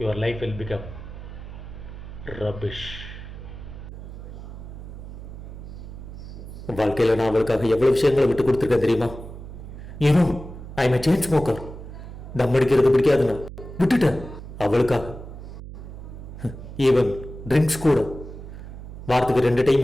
your life will become rubbish. வாழ்க்கையில நான் அவளுக்காக எவ்வளவு விஷயங்களை விட்டு கொடுத்துருக்கேன் தெரியுமா? ஏனோ ஐ எம் செயின் ஸ்மோக்கர். தம் அடிக்கிறது பிடிக்காதுன்னா விட்டுட்டேன் அவளுக்காக. ஈவன் ட்ரிங்க்ஸ் கூட வாரத்துக்கு 2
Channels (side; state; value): right; noise; hum, 12 dB below the sound